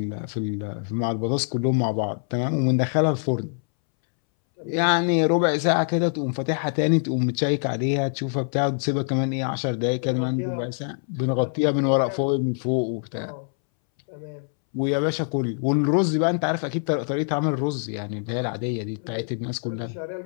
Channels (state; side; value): silent; right; 62 dB below the other